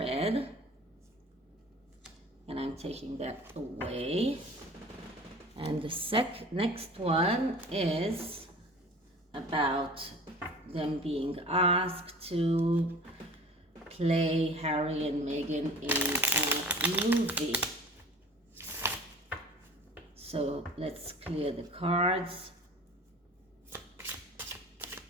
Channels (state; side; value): normal; both; correlation 0.43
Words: and I'm taking that away. And the next one is about them being asked to play Harry and Meghan in a movie. So let's clear the cards.